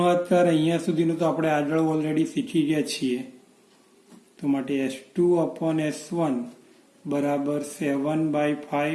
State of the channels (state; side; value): identical; both; correlation 1.00